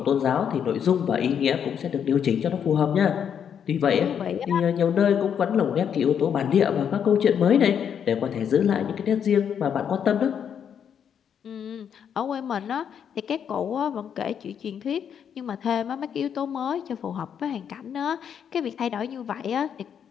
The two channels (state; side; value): quieter; right; 8.1 dB